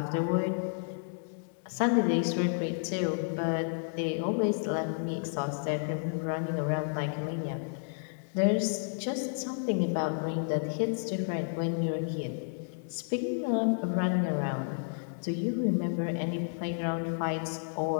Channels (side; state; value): right; silent; digital silence